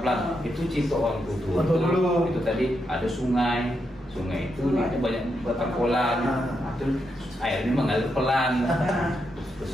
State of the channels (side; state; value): both; normal; correlation 0.83